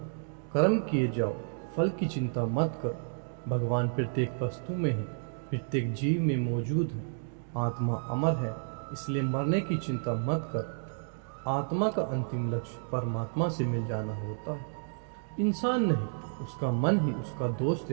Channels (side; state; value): left; silent; digital silence